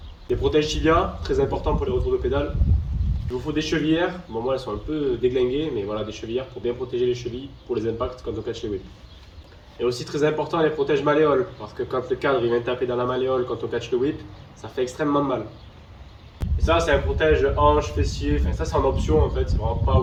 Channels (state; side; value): identical; both; correlation 1.00